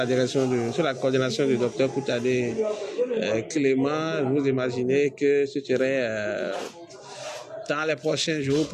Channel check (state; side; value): identical; both; correlation 1.00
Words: coordination du docteur Koutadé Clément. Vous imaginez que ce serait dans les prochains jours